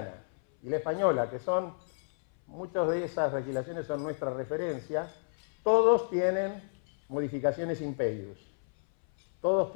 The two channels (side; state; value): right; silent; 57 dB below the other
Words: y la española, que son, muchas de esas legislaciones son nuestra referencia, todos tienen modificaciones impeius. Todos